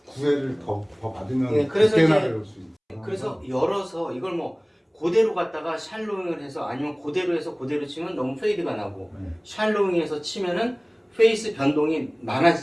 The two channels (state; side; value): identical; both; correlation 1.00